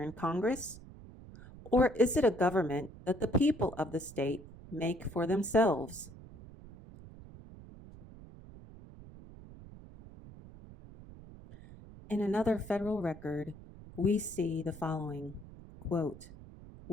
in Congress? Or is it a government that the people of the state make for themselves?" In another federal record, we see the following, quote,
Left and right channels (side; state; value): right; noise; rumble, 17 dB below the sound